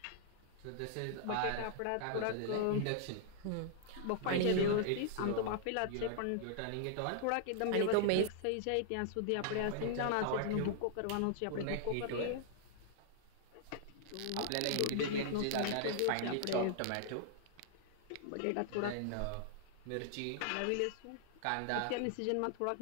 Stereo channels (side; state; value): both; different; correlation -0.01